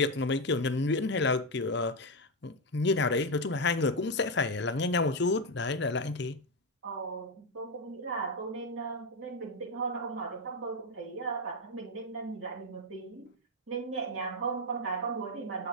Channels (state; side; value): normal; both; correlation 0.08